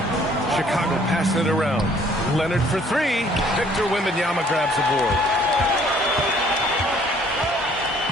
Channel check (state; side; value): normal; both; correlation 0.59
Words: Chicago passing it around. Leonard for 3. Victor Wembanyama grabs the board.